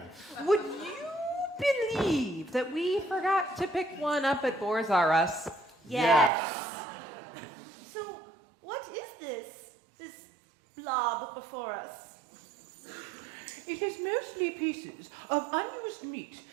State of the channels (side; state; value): left; drops out; at 6.3 s